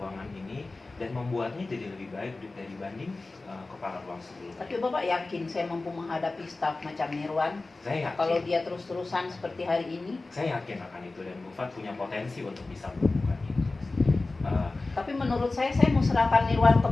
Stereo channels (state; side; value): quieter; right; 3.3 dB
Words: ini dan membuatnya jadi lebih baik dibanding kepala ruang sebelumnya. Tapi Bapak yakin saya mampu menghadapi staf macam Nirwan? Saya yakin. Kalau dia terus-terusan seperti hari ini? Saya yakin akan itu dan Bu Fat punya potensi untuk bisa melakukan itu. Tapi menurut saya mau serahkan Nirwan ke